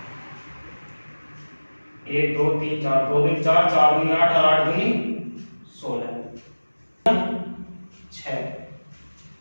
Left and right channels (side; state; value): both; inverted; correlation -1.00